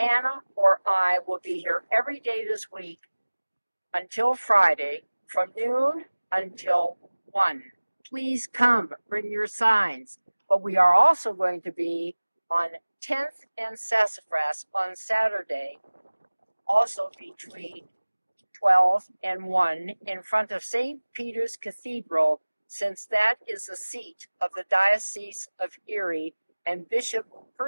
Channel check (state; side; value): inverted; both; correlation -1.00